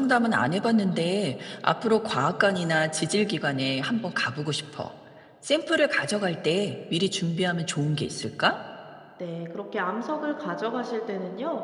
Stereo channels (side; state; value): both; identical; correlation 1.00